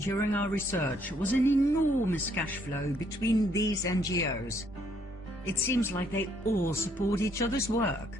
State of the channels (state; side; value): normal; both; correlation 0.68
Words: our research was an enormous cash flow between these NGOs. It seems like they all support each other's